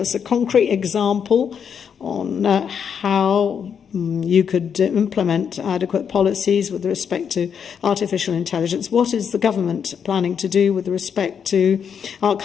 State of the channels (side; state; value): right; quieter; 7.4 dB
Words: a concrete example on how you could implement adequate policies with respect to artificial intelligence. What is the government planning to do with respect to our